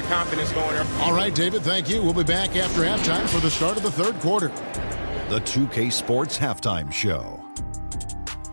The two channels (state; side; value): inverted; both; correlation -1.00